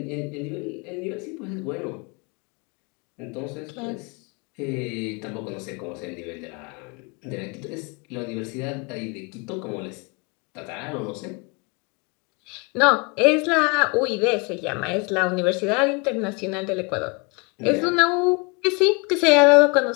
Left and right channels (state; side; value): quieter; right; 30.4 dB